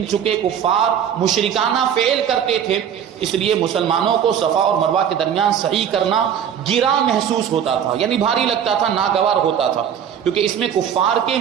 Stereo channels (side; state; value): left; quieter; 8.8 dB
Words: چونکہ کفار مشرکانہ فعل کرتے تھے اس لیے مسلمانوں کو صفا اور مروہ کے درمیان صحیح کرنا گراں محسوس ہوتا تھا، یعنی بھاری لگتا تھا، ناگوار ہوتا تھا، کیونکہ اس میں کفار کے